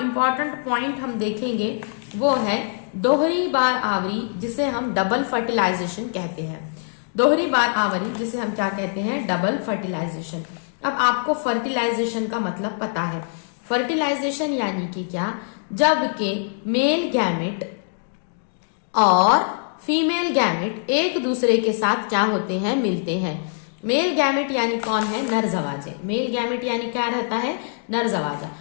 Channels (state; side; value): silent; right; digital silence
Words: पॉइंट हम देखेंगे वो है दोहरी बार आवरी, जिसे हम डबल फर्टिलाइजेशन कहते हैं। दोहरी बार आवरी जिसे हम क्या कहते हैं, डबल फर्टिलाइजेशन। अब आपको फर्टिलाइजेशन का मतलब पता है। फर्टिलाइजेशन यानी कि क्या, जबकि मेल गैमेट और फीमेल गैमेट एक दूसरे के साथ क्या होते हैं, मिलते हैं। मेल गैमेट यानी कौन है, नर जवाजे। मेल गैमेट यानी क्या रहता है, नर जवाजा।